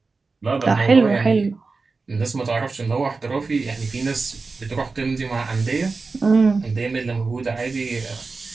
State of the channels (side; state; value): left; quieter; 4.1 dB